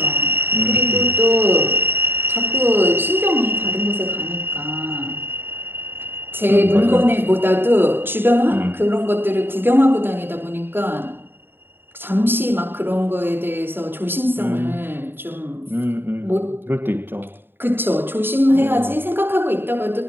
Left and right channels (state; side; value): late; left; 0.10 ms